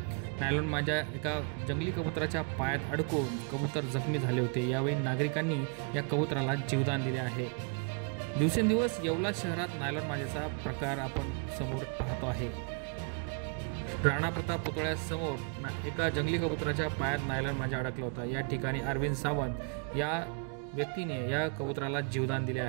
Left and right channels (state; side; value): quieter; left; 37.4 dB